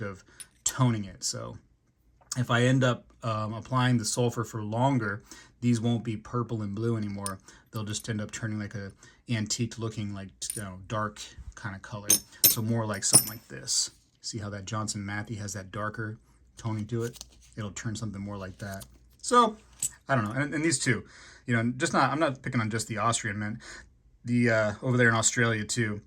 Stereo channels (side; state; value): both; identical; correlation 1.00